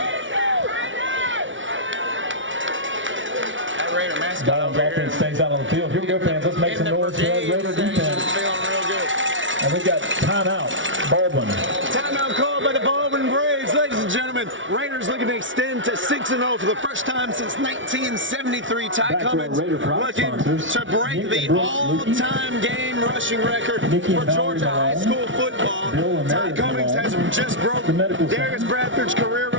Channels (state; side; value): late; left; 0.56 ms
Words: That Raider mascot over here. Baldwin stays out on the field. Here we go, fans. Let's make some noise for that Raider defense. Feeling real good. And we've got timeout. Baldwin. Timeout called by the Baldwin Braves, ladies and gentlemen. Raiders looking to extend to 6-0 for the first time since 1973. Ty Cummings looking to break the all-time game rushing record for Georgia high school football. Ty Cummings has just broke Darius Bradford's career